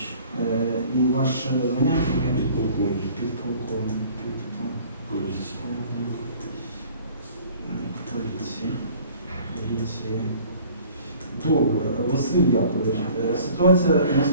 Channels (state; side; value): inverted; both; correlation -0.50